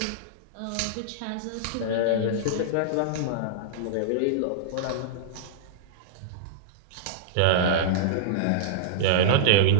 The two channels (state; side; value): different; both; correlation -0.02